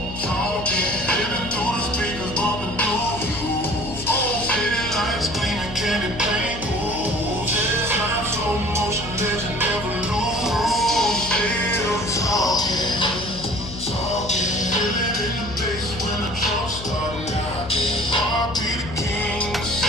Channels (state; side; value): noise; left; hum, 11 dB below the sound